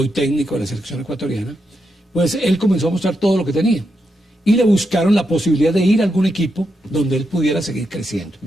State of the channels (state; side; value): normal; both; correlation 0.84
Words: técnico de la selección ecuatoriana, pues él comenzó a mostrar todo lo que tenía. Y le buscaron la posibilidad de ir a algún equipo donde él pudiera seguir creciendo.